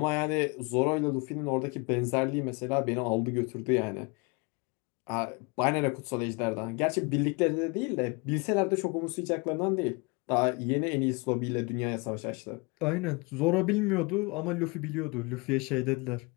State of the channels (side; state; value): right; quieter; 28.9 dB